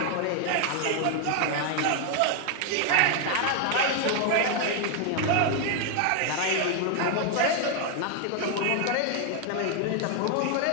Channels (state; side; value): different; both; correlation 0.00